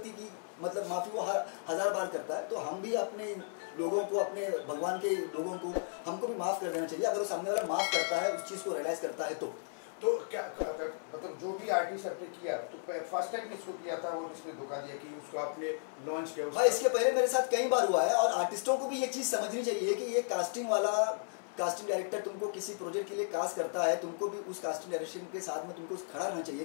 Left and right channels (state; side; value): silent; right; 55 dB below the other